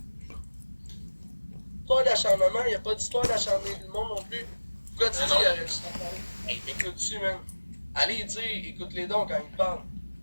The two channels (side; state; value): both; inverted; correlation -1.00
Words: Histoire d'acharnement, il n'y a pas d'histoire d'acharner le monde non plus. Pourquoi tu dis il aurait dû hey, écoute-tu, man. Allez dire, écoute-les donc quand ils parlent.